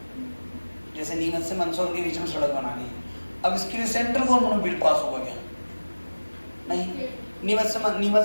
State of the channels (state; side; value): inverted; both; correlation -1.00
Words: जैसे नीमच से मंदसौर के बीच में सड़क बनानी है, अब इसके लिए सेंट्रल गवर्नमेंट बिल पास होगा क्या? नहीं।